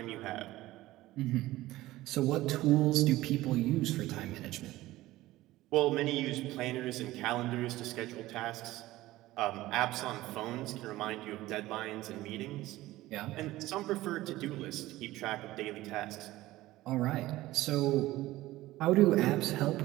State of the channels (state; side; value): quieter; left; 17.0 dB